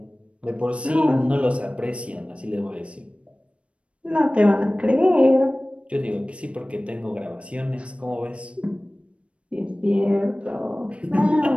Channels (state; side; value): late; left; 0.061 ms